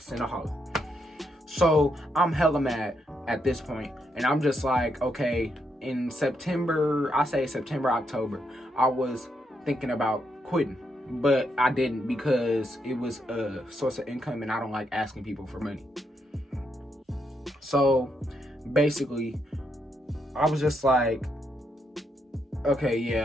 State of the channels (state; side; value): normal; both; correlation 0.79